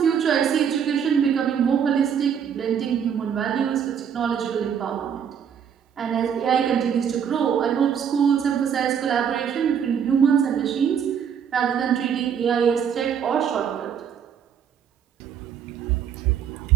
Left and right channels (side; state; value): left; quieter; 7.9 dB